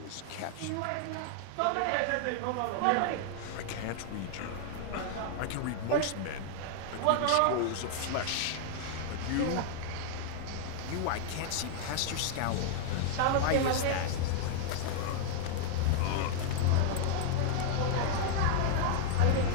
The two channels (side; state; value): both; different; correlation 0.00